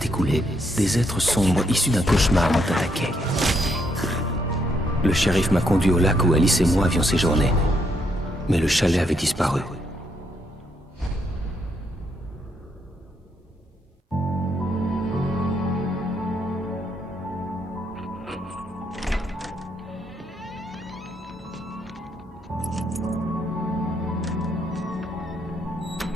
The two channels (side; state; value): both; normal; correlation 0.75